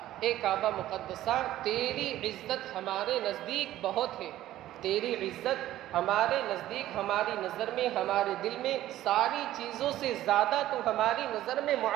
کعبہ مقدسہ، تیری عزت ہمارے نزدیک بہت ہے، تیری عزت ہمارے نزدیک، ہماری نظر میں، ہمارے دل میں ساری چیزوں سے زیادہ تو ہماری نظر میں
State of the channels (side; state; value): left; quieter; 14.0 dB